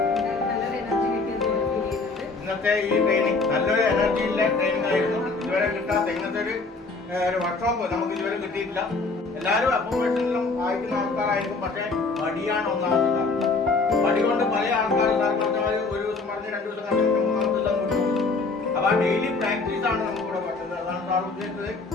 ഇന്നത്തെ ഈ ട്രെയിനിങ് നല്ലൊരു എനർജിയിലെ ട്രെയിനിങ് ആയിരുന്നു. ഇതുവരെ കിട്ടാത്ത ഇന്നത്തെ ഒരു വർക്ക്ഷോപ്പ് നമുക്ക് ഇതുവരെ കിട്ടിയിട്ടില്ല. എല്ലാവരും അക്കോമഡേഷനിലും അയക്കുന്ന ആൾക്കാരായിരിക്കും. പക്ഷേ മടിയാണ് ഒന്നാമത്തെ കാരണം. മടി കൊണ്ട് പല ആൾക്കാരും ഒരു ദിവസം പറഞ്ഞ് 2 ദിവസം കണ്ടിട്ട് 3-ാമത്തെ ദിവസം വിട്ടു. അപ്പോൾ ഡെയിലി പ്രാക്ടീസ് ആണ് നമുക്കിവിടെ പറ്റുന്നത്. അതാണ് സാർ ഉദ്ദേശിച്ചത്.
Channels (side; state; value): right; quieter; 3.9 dB